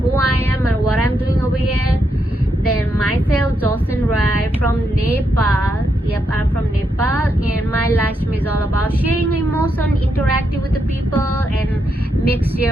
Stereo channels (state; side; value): normal; both; correlation 0.81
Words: I am and what I'm doing over here, then myself, Jocelyn Rai from Nepal. Yep, I'm from Nepal, and my live stream is all about sharing emotion, interacting with the people, and make